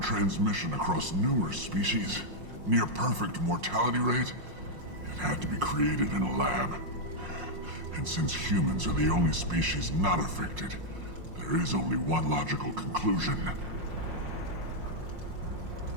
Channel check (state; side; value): late; left; 5.6 ms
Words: transmission across numerous species, near perfect mortality rate. It had to be created in a lab. And since humans are the only species not affected, there is only one logical conclusion.